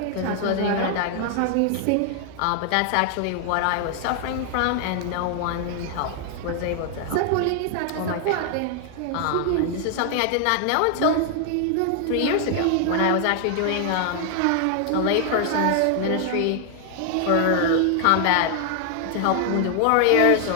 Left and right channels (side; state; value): both; different; correlation 0.00